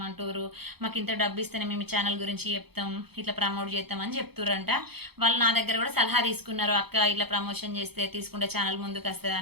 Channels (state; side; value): late; left; 0.96 ms